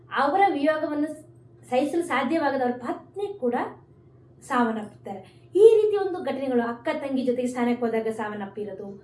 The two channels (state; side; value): identical; both; correlation 1.00